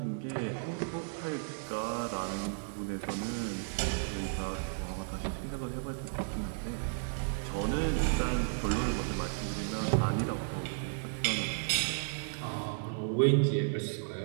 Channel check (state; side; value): silent; left; digital silence